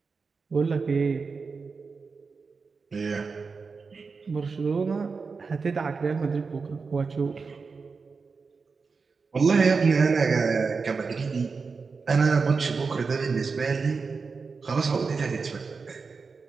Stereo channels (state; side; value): quieter; left; 4.8 dB